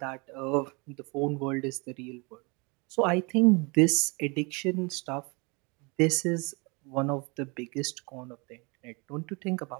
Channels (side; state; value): left; quieter; 29.6 dB